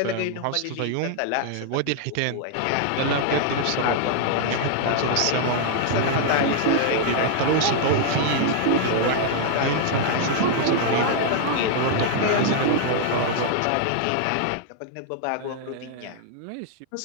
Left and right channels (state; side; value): different; both; correlation -0.01